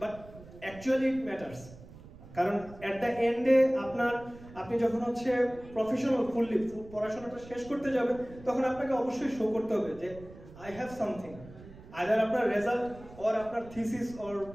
but actually it matters. কারণ অ্যাট দ্য এন্ডে আপনি যখন হচ্ছে প্রফেশনাল ফুললি পড়াশোনাটা শেষ করতে যাবেন, তখন আপনাকে অবশ্যই শো করতে হবে যে আই হ্যাভ সামথিং। আইদার আপনার রেজাল্ট অর আপনার থিসিস অর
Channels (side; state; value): right; noise; rumble, 18 dB below the sound